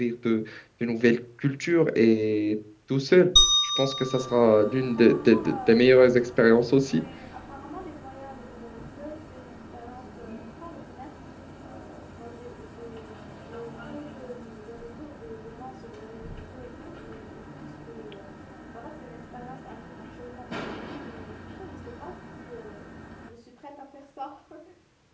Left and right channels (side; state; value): both; identical; correlation 1.00